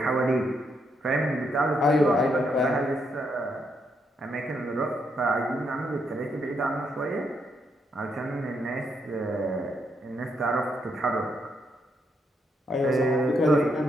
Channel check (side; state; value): both; normal; correlation 0.77